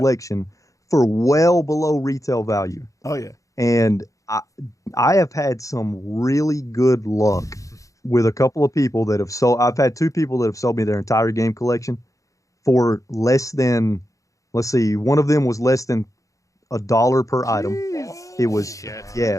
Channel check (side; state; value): right; late; 0.16 ms